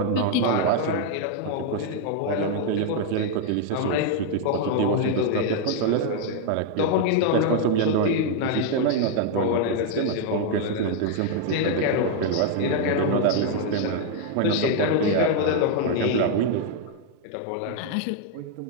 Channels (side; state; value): both; different; correlation 0.00